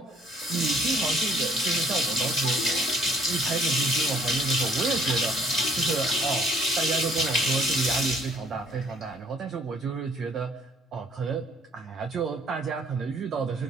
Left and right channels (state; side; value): normal; both; correlation 0.61